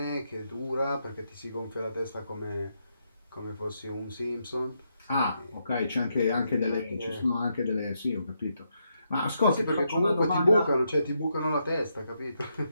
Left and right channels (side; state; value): both; inverted; correlation -0.80